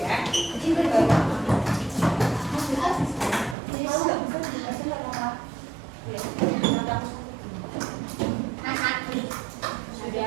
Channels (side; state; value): left; drops out; at 3.6 s